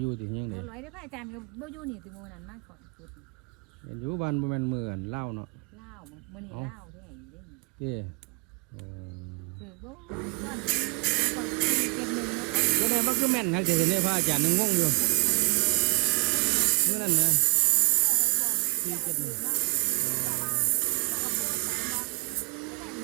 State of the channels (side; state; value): left; quieter; 31.4 dB